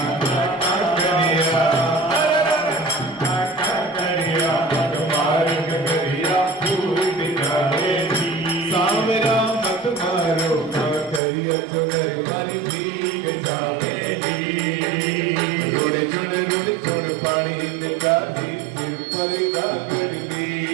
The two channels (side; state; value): left; drops out; at 11.2 s